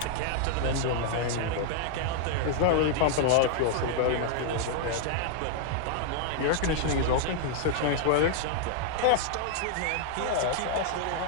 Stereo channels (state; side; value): different; both; correlation -0.01